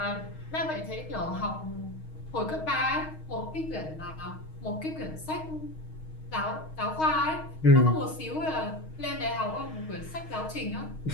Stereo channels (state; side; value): late; right; 6.4 ms